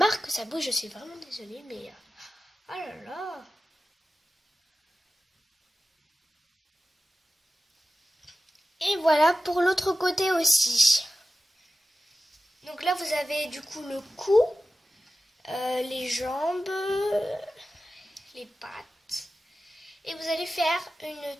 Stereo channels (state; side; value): normal; both; correlation 0.94